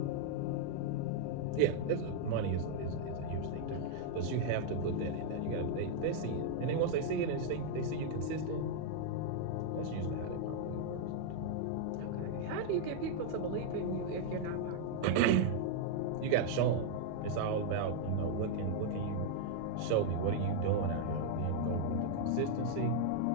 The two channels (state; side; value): different; both; correlation -0.01